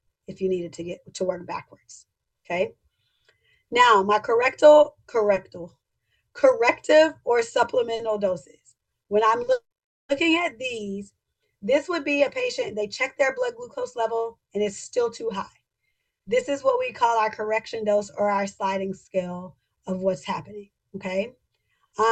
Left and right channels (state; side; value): identical; both; correlation 1.00